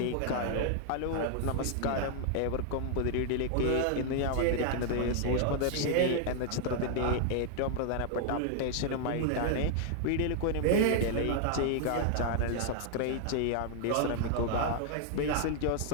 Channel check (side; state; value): both; different; correlation 0.00